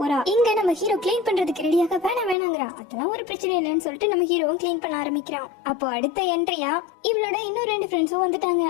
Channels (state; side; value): drops out; right; at 2.4 s